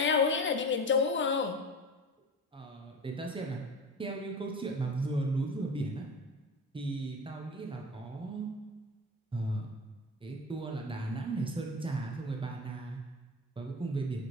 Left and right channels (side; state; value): both; normal; correlation 0.29